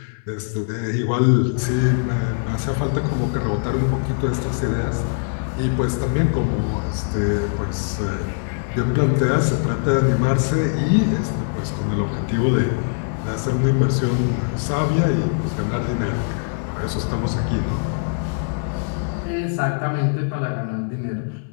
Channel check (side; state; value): right; silent; 64 dB below the other